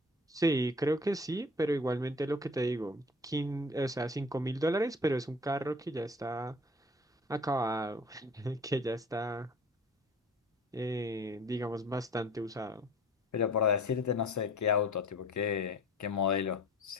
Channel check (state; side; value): normal; both; correlation 0.45